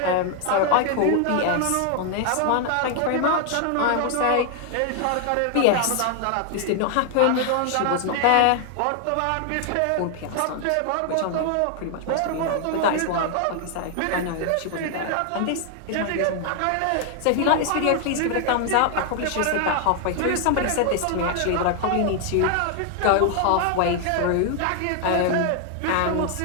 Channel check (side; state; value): both; different; correlation 0.00